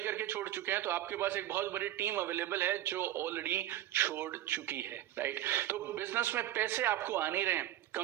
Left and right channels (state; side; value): quieter; left; 13.5 dB